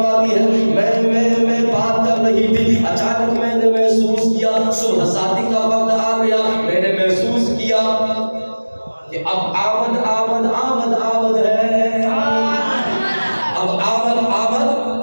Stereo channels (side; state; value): both; inverted; correlation -1.00